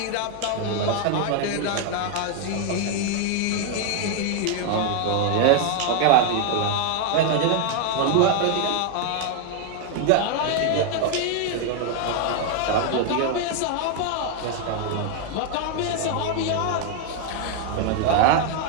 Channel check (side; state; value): both; different; correlation 0.00